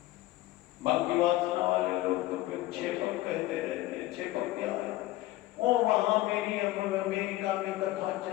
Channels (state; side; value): quieter; right; 16.9 dB